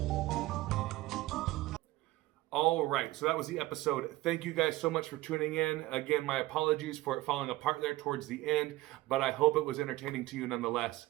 All right, so that was the episode. Thank you guys so much for tuning in. Again, my apologies for it falling apart there towards the end, but I hope it was entertaining to you nonetheless.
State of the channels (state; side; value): quieter; left; 18.4 dB